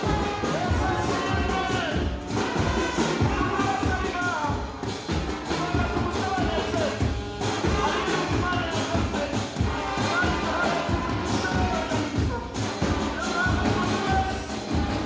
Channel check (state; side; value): identical; both; correlation 1.00